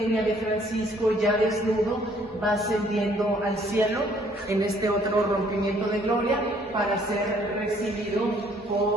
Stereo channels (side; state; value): both; normal; correlation 0.62